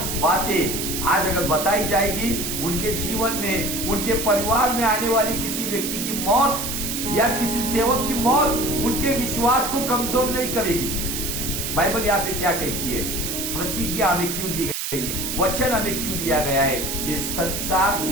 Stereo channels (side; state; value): right; noise; hiss, 3 dB below the sound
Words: बातें आज अगर बताई जाएगी, उनके जीवन में, उनके परिवार में आने वाली किसी व्यक्ति की मौत या किसी सेवक की मौत उनके विश्वास को कमजोर नहीं करेगी। बाइबल यहाँ पे क्या कहती है? प्रतिज्ञा हमें क्यों दी गई है, वचन हमें क्यों दिया गया है कि संसार